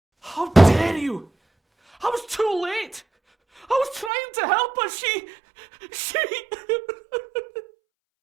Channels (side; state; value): left; drops out; at 4.1 s